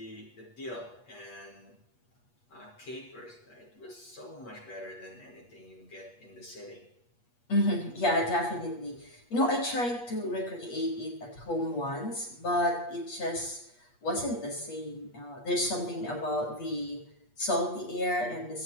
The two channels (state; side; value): late; right; 8.3 ms